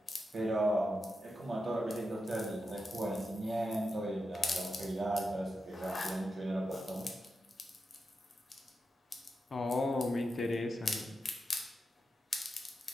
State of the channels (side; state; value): both; normal; correlation 0.88